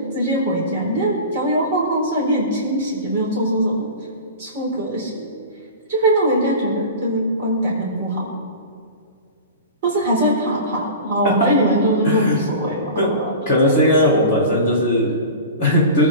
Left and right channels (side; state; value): both; inverted; correlation -0.33